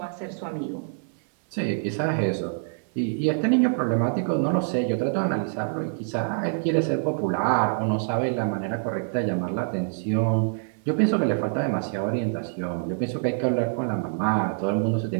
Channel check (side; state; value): left; silent; 61 dB below the other